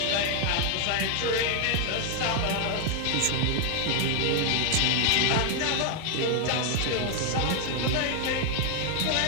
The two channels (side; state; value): both; different; correlation 0.00